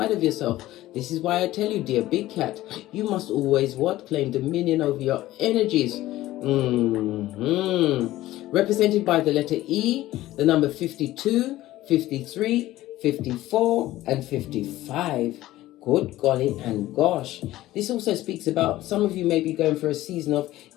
of yourself. This is why I tell you, dear big cat, you must always what? Claim dominion over your energies. Represented by the letter E, the number 52, 53, 54, and 55. Good golly and gosh. This also speaks about some of you may be going for a season of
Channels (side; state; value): right; quieter; 15.7 dB